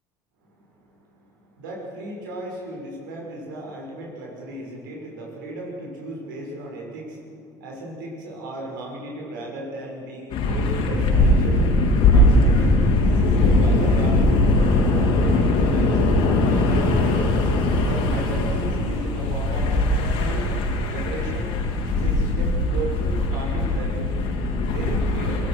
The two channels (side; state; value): both; normal; correlation 0.43